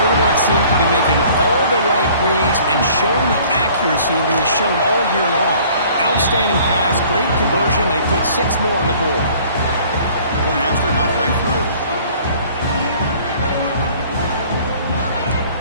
seems to be making all the right reads and showing the accuracy that he's shown all year long. Outstanding pass, great conversion. They put 6 more on the board. Point after, not right through.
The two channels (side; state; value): both; inverted; correlation -0.53